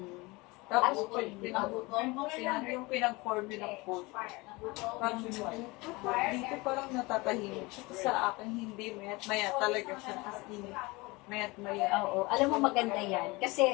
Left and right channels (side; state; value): right; quieter; 24.0 dB